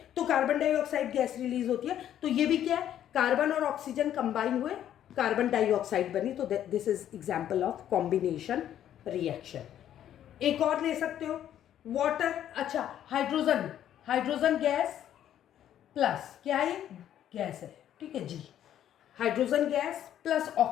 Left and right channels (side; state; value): right; quieter; 10.9 dB